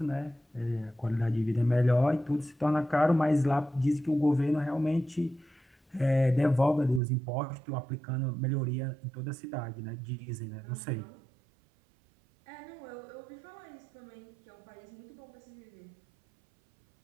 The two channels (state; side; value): drops out; left; at 7.0 s